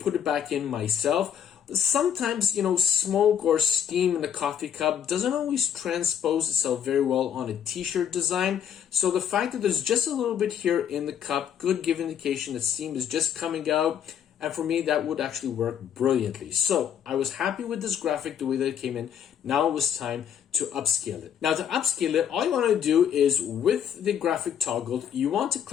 it back in myself. Sometimes, smoke or steam in the coffee cup doesn't always transpose itself very well on a t-shirt design. So the fact that there's just a little bit here in the cup could give indication that steam is just coming out. And for me, that would actually work brilliantly. So I was happy with this graphic, the way that it came in. Now it was time to upscale it. Now to upscale it, all you want to do is with the graphic toggled, you want to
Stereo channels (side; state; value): right; quieter; 8.8 dB